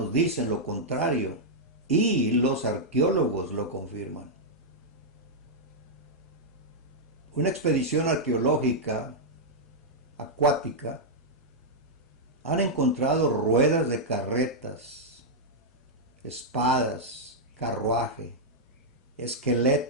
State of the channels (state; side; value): normal; both; correlation -0.06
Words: dicen lo contrario y los arqueólogos lo confirman. Una expedición arqueológica acuática han encontrado ruedas de carretas, espadas, carruaje,